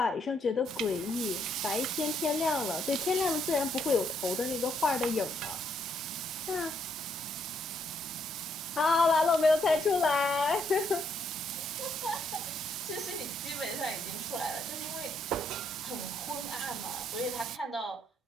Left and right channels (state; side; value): normal; both; correlation 0.73